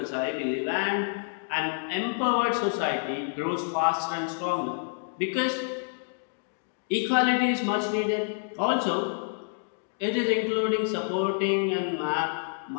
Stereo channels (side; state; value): right; silent; digital silence